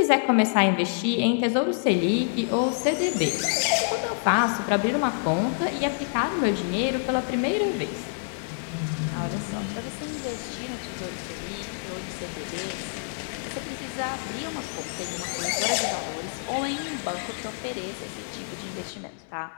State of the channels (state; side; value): silent; right; digital silence